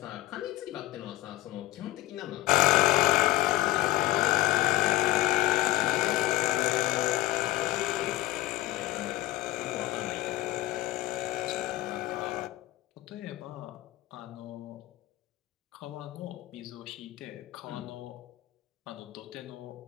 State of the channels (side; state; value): right; quieter; 16.7 dB